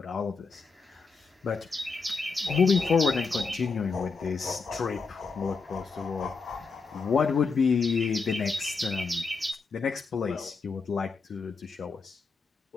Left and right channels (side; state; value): right; quieter; 4.7 dB